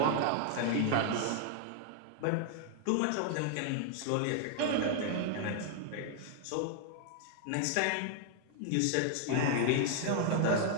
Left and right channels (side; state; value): both; different; correlation 0.00